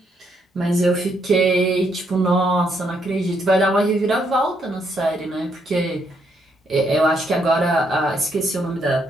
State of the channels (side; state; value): both; normal; correlation 0.74